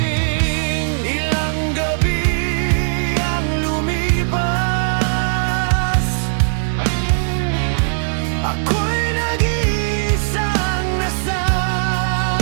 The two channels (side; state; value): left; silent; digital silence